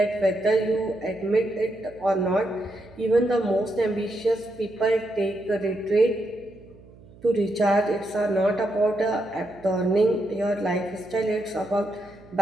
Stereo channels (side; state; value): right; noise; hum, 23 dB below the sound